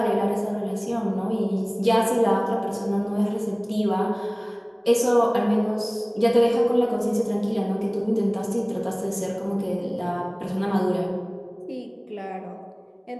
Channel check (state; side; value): identical; both; correlation 1.00